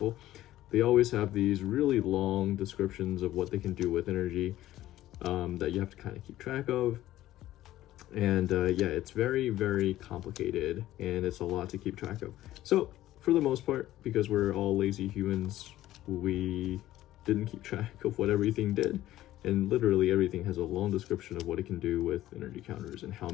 they always have these really long descriptions of what they can do with energy that you have to kind of keep track of. And yeah, it's very complicated, and it's a lot to keep track of. So for the most part, because we're all lazy humans, we didn't keep track of what everything did. And literally everything has a long description of what it can do with energy counters and how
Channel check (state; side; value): quieter; right; 14.5 dB